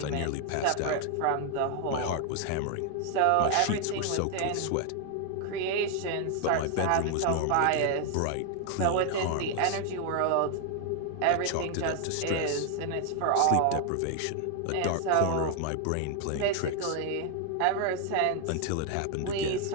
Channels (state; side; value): different; both; correlation 0.00